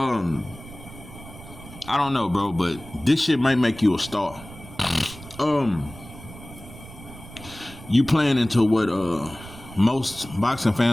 don't know, bro, but this shit might make you a star. You playing into what most boxing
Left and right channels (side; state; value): right; noise; rumble, 17 dB below the sound